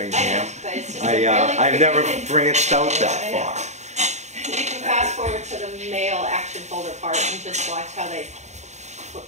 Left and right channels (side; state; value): left; late; 0.33 ms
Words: I've never branched out that far. You can fast forward to the mail action folder part and just watch how they,